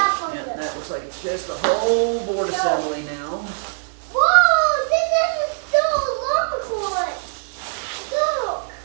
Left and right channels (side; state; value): left; silent; digital silence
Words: on Yeah, this. that looks like it's just a whole board assembly now. Whoa, this is still a long one. Look,